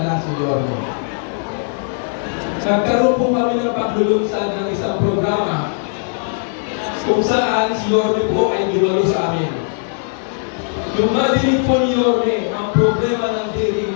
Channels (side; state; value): right; silent; digital silence